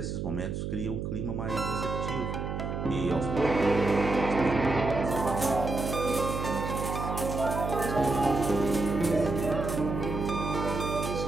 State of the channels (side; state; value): right; noise; hum, 4 dB below the sound